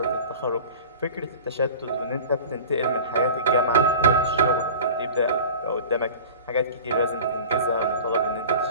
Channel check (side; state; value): both; inverted; correlation -0.38